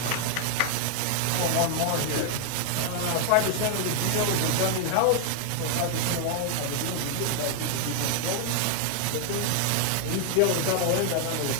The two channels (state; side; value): different; both; correlation 0.00